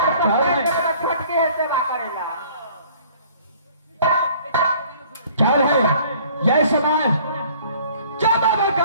छटके है सेवा करेला। क्या है यह समय जब आप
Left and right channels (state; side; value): inverted; both; correlation -0.54